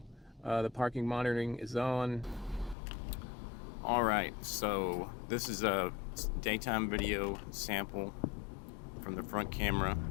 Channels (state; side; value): drops out; right; at 2.8 s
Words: the parking monitoring is on. Alright, so this is a daytime video sample from the front camera.